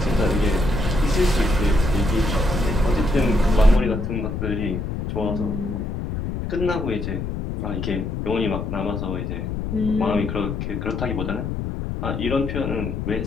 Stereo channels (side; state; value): left; noise; rumble, 4 dB below the sound